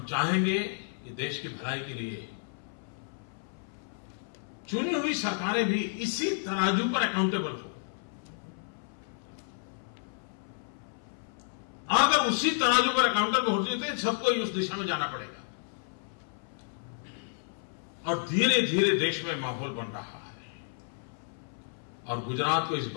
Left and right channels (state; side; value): silent; right; 57 dB below the other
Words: चाहेंगे कि देश की भलाई के लिए चुनी हुई सरकारें भी इसी तराजू पर अकाउंटेबल हो। अगर उसी तराजू पर अकाउंटेबल होती है तो सबको ही उस दिशा में जाना पड़ेगा। और धीरे धीरे देश में माहौल बन रहा है। और गुजरात को इस